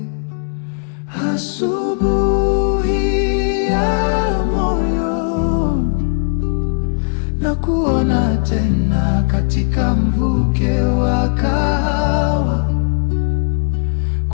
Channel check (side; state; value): right; silent; digital silence